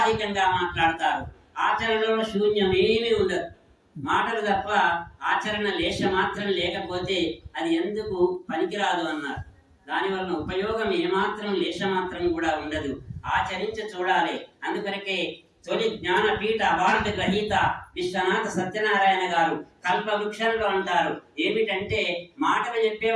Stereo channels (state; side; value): identical; both; correlation 1.00